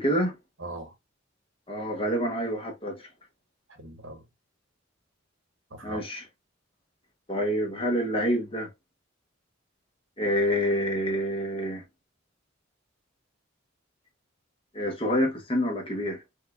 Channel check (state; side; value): normal; both; correlation 0.37